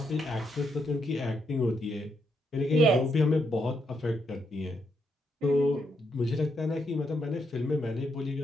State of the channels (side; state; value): both; normal; correlation 0.79